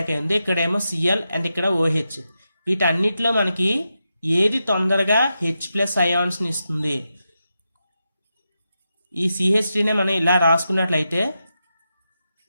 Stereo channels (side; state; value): both; inverted; correlation -0.88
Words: అయింది, ఇక్కడేమో Cl అండ్ ఇక్కడ OH. వీటన్నిటిలో మనకి ఏది తొందరగా H+ అయాన్స్ని ఇస్తుంది? ఈ CH3నే మనం ఇలా రాసుకున్నట్లయితే